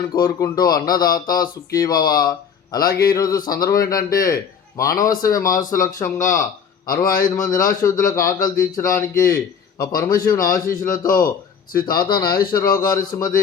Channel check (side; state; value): right; quieter; 7.0 dB